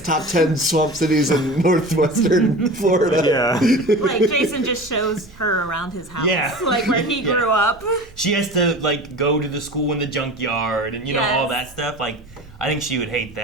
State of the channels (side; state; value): right; noise; hum, 29 dB below the sound